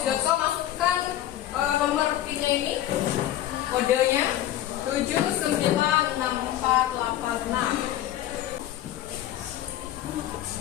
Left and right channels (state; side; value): quieter; right; 12.8 dB